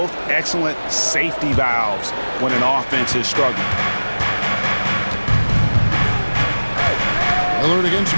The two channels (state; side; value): inverted; both; correlation -1.00